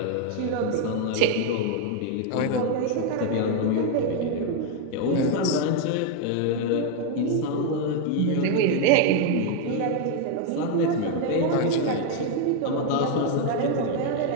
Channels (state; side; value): different; both; correlation 0.01